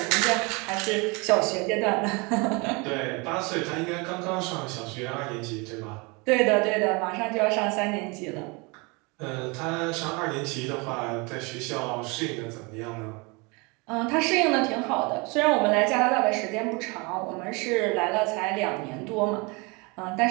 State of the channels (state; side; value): quieter; left; 28.4 dB